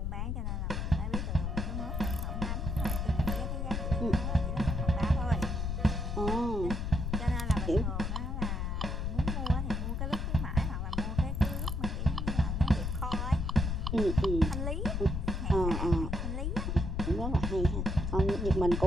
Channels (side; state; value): left; noise; rumble, 1 dB below the sound